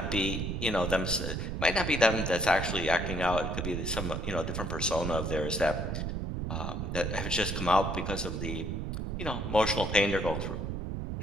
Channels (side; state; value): right; noise; rumble, 3 dB below the sound